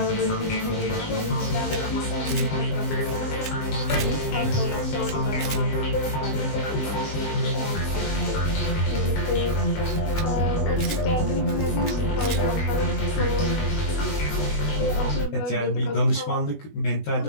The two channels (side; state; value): right; late; 20 ms